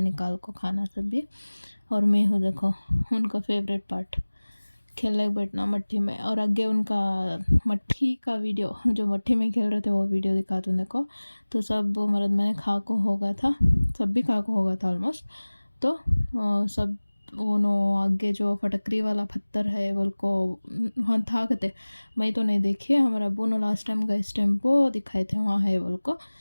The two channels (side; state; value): both; inverted; correlation -1.00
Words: निकाल को खाना सब भी। और मैं हूँ देखो उनका फेवरेट पार्ट खेलने बैठना मट्टी में, और आगे उनका मट्टी का वीडियो जो मट्टी में खेल रहे थे वो वीडियो दिखाता हूँ देखो। तो सब मर्द मैंने खा को होगा था, सब भी खा को होगा था ऑलमोस्ट। तो सब उन्होंने आगे जो फटकरी वाला पत्थर है बोल को वहाँ था कहते, मैं तो नहीं देखी है, हमारे अब्बू ने लास्ट टाइम गए इस टेम्पो दिखाए थे वहाँ है बोल को।